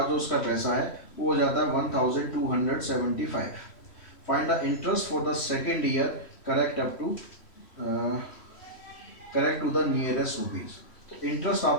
जो उसका पैसा है वो हो जाता है 1275। Find the interest for the second year correct to the nearest rupees. तो इंटरेस्ट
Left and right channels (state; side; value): late; right; 3.1 ms